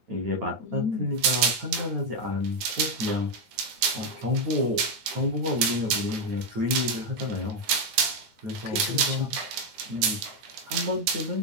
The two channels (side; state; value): left; late; 9.8 ms